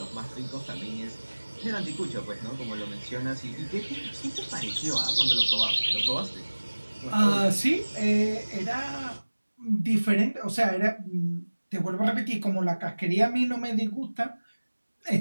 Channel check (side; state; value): both; inverted; correlation -1.00